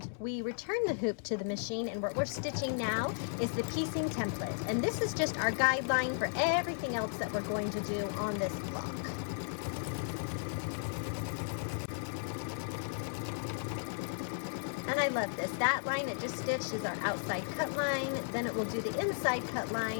we return the hoop to the machine, and what we're stitching now is the piecing template. And this is just our guideline for everything else that we're going to do on this block. And I love this. That line it just stitched is our outside cut line, then it will do the inside cut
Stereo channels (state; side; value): silent; right; digital silence